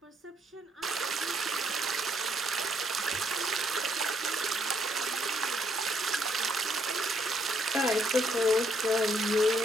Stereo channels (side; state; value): both; normal; correlation 0.72